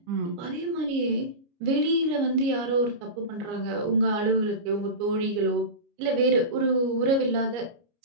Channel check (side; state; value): left; late; 29 ms